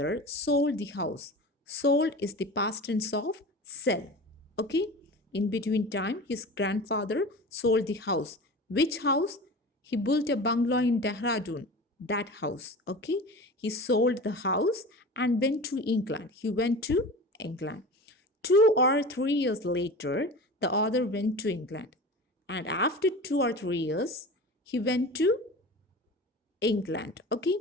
sold the house. Sold is the past tense of sell. Okay? In between time, his grandfather sold the house. Which house? He built a bungalow in Dehradun. that house. Okay, he sold the house and went to England. He went to England. 2 or 3 years later, the author went to England. And after 2 or 3 years, he went to England. Okay,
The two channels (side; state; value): both; normal; correlation 0.34